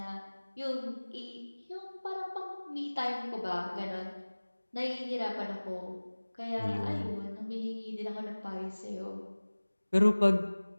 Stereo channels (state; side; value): inverted; both; correlation -1.00